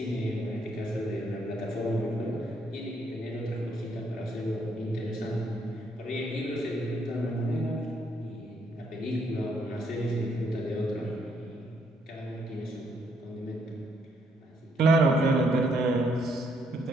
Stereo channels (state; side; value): normal; both; correlation 0.72